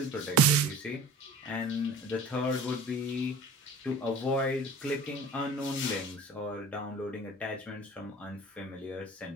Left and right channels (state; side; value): normal; both; correlation 0.41